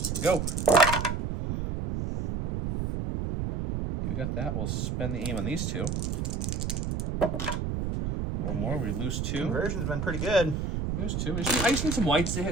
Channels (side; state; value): right; noise; rumble, 2 dB below the sound